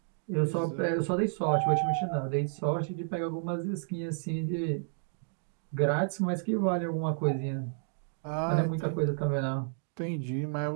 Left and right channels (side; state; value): left; silent; digital silence